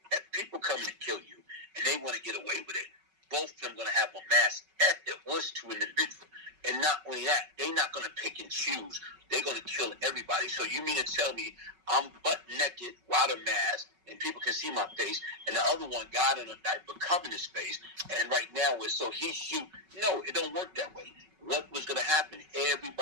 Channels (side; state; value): left; late; 5.3 ms